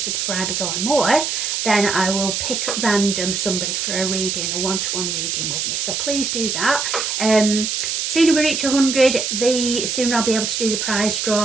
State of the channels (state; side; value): noise; right; hiss, 1 dB below the sound